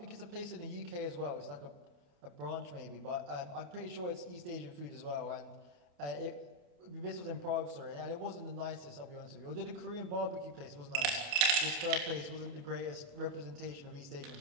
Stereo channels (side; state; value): left; late; 28 ms